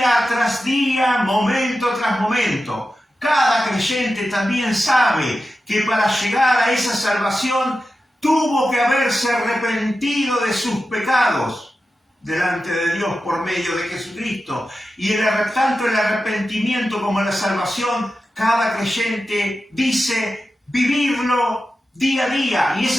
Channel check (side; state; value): both; normal; correlation 0.92